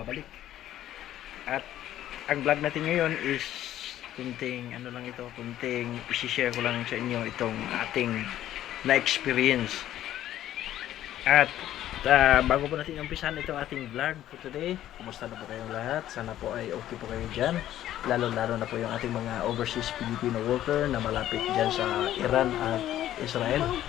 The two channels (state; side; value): quieter; right; 12.6 dB